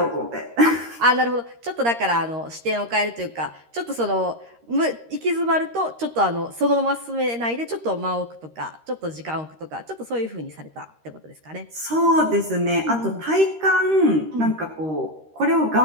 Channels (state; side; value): late; left; 13 ms